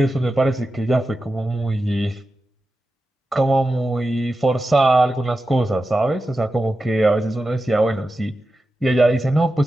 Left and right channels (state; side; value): normal; both; correlation 0.92